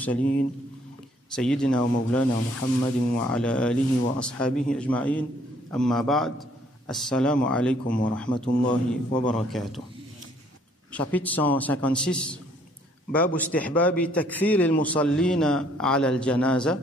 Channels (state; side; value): normal; both; correlation 0.63